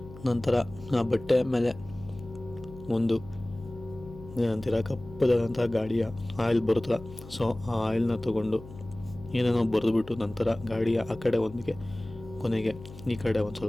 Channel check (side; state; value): left; noise; hum, 16 dB below the sound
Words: ನಂತರ ಆ ಬಟ್ಟೆ ಮೇಲೆ ಒಂದು ಏನಂತೀರ ಕಪ್ಪದಾದಂತಹ ಗಾಡಿಯ ಆಯಿಲ್ ಬರುತ್ತಲ್ಲ, ಸೊ ಆ ಆಯಿಲ್ನ ತೊಗೊಂಡು ಏನೇನೋ ಬರೆದುಬಿಟ್ಟು ನಂತರ ಗಾಡಿಯ ಆ ಕಡೆ ಒಂದಿಗೆ ಕೊನೆಗೆ ಈ ಕಡೆ ಒಂದು